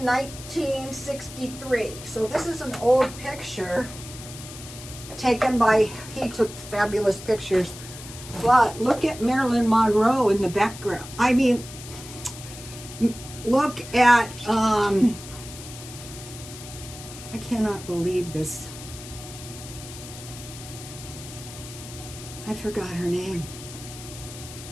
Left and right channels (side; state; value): left; noise; hiss, 14 dB below the sound